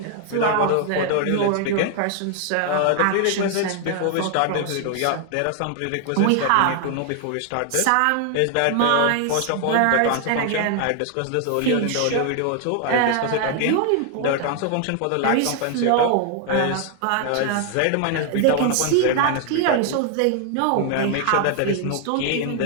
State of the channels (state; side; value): different; both; correlation 0.00